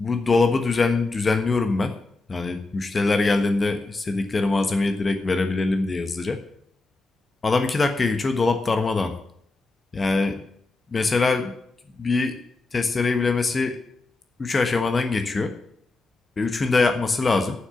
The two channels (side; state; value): right; quieter; 3.3 dB